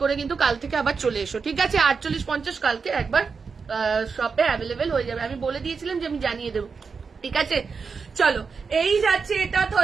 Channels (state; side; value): quieter; left; 5.3 dB